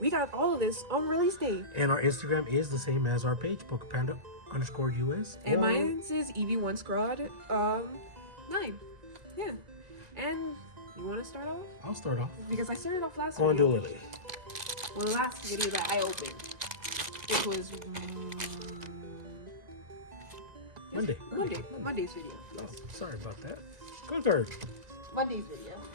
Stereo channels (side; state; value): left; late; 1.9 ms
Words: we got all of this on release day. And our Instagram is the same as our page, PokePanda_US. And or- mine says EV1 Squad 9. Yeah. And you wanna start off? I'll start off. Because I started off last Go and do video. Lily. Well, the last video that I opened. It was Monday's video. Oh, sorry about that. Go third. Monday's video,